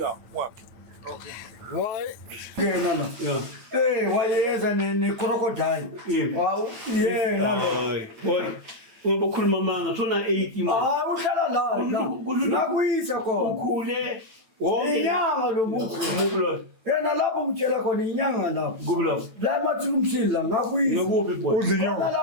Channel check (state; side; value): late; left; 8.9 ms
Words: wa. Okay. Why? Kena la. Yeah. Eh, wayenza ne crocodile. Yeah. Wow. Yeah, nalo. Boy. Ngoba ukhuluma manga sona 80 manje. Ah, uhlala la. Nakuyisa khona. Ukhule. Wonke Inyanga lo muntu. Ngubulwa. Yena lapho ngitshela khona inyanga lapho. Ngubulwa. La mathulu umsila ngakuyisa. Ngakuphi boy? Khona